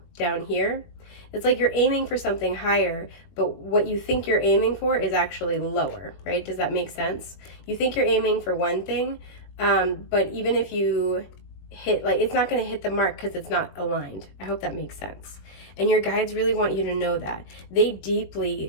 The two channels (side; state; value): right; late; 21 ms